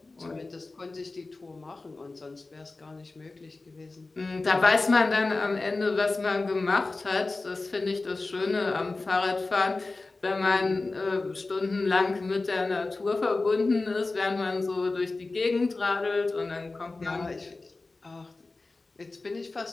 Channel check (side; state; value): right; quieter; 3.4 dB